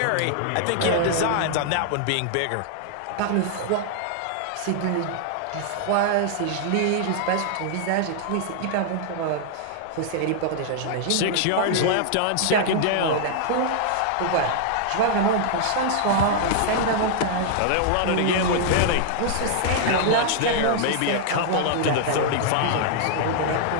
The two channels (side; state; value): both; different; correlation -0.01